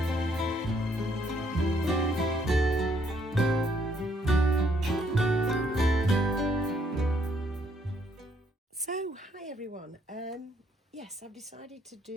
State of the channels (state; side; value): normal; both; correlation 0.69